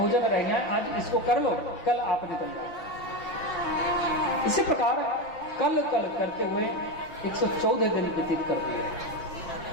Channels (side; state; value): right; late; 5.9 ms